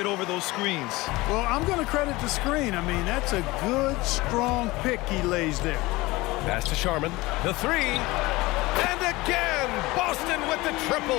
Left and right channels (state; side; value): quieter; right; 21.0 dB